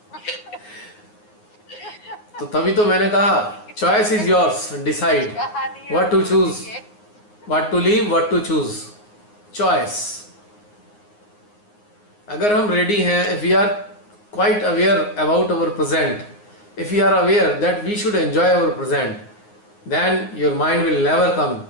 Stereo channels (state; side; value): late; right; 9.6 ms